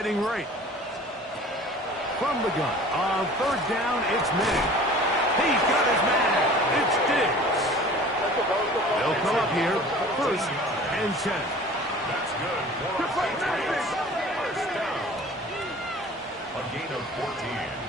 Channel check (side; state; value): both; normal; correlation 0.45